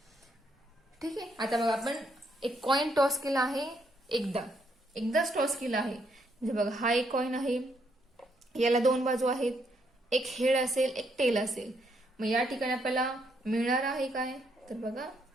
ठीक आहे. आता बघा, आपण एक कॉइन टॉस केला आहे, एकदाच टॉस केला आहे. म्हणजे बघा, हा एक कॉइन आहे, याला 2 बाजू आहेत, एक हेड असेल, एक टेल असेल. मग या ठिकाणी आपल्याला मिळणार आहे काय, तर बघा,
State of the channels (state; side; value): normal; both; correlation 0.74